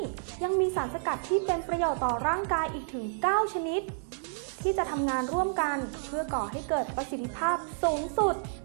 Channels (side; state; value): left; silent; 58 dB below the other